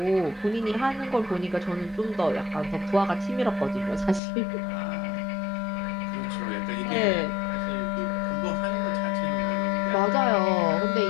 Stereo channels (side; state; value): right; drops out; at 4.2 s